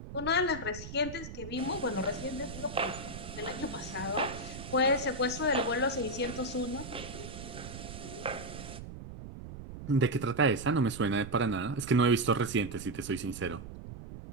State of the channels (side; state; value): right; noise; rumble, 11 dB below the sound